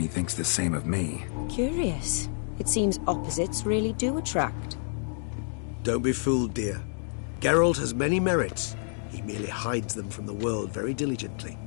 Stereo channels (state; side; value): silent; right; 59 dB below the other